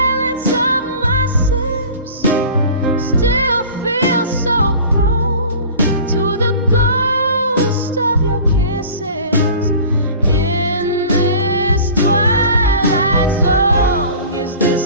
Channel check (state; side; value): inverted; both; correlation -0.41